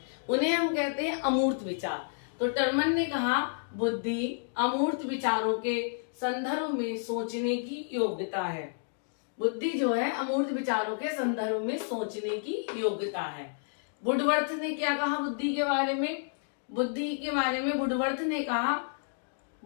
उन्हें हम कहते हैं अमूर्त विचार। तो टर्मन ने कहा बुद्धि अमूर्त विचारों के संदर्भ में सोचने की योग्यता है। बुद्धि जो है अमूर्त विचारों के संदर्भ में सोचने की योग्यता है। वुडवर्थ ने क्या कहा बुद्धि के बारे में? बुद्धि के बारे में वुडवर्थ ने कहा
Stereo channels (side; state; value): right; silent; digital silence